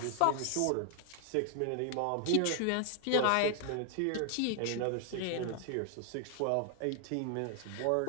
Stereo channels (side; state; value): both; different; correlation 0.00